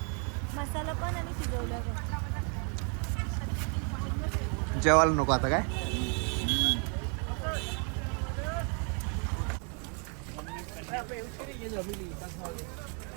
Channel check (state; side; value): quieter; left; 38.6 dB